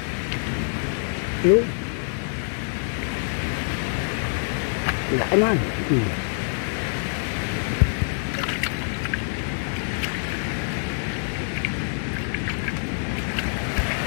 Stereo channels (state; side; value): silent; right; digital silence